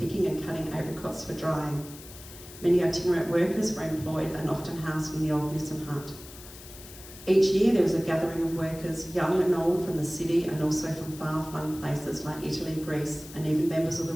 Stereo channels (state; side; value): noise; left; hiss, 17 dB below the sound